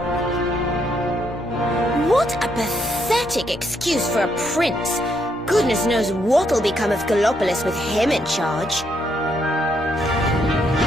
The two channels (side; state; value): both; normal; correlation 0.75